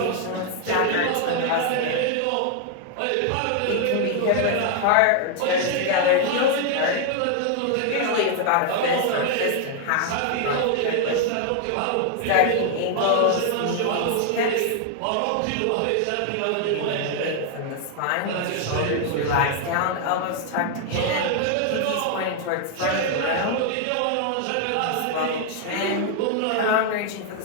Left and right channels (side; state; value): both; different; correlation 0.00